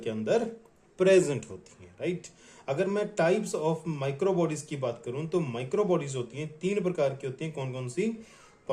अंदर प्रेजेंट होती हैं, राइट। अगर मैं टाइप्स ऑफ माइक्रो बॉडीज की बात करूं तो माइक्रो बॉडीज होती हैं, तीन प्रकार की होती हैं। कौन कौन सी?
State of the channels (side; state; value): both; identical; correlation 1.00